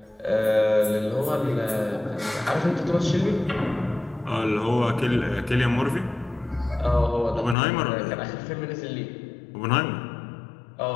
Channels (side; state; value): right; drops out; at 7.6 s